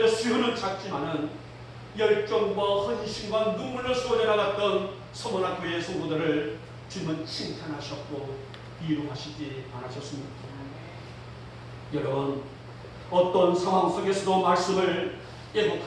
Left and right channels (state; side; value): identical; both; correlation 1.00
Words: 수요는 작지만은 열정과 헌신과 눈물로 쏟아 나갔던 서머나 교회의 성도들을 주님은 칭찬하셨고 위로하시지 않으셨습니까? 여러분, 어떤 상황 속에서도 말씀을